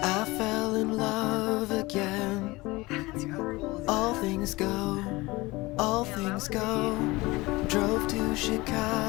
fell in love again. All things go, all things go. Drove to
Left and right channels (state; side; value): quieter; right; 21.7 dB